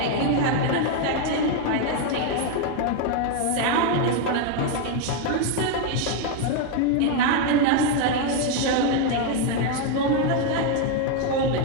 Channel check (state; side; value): different; both; correlation 0.01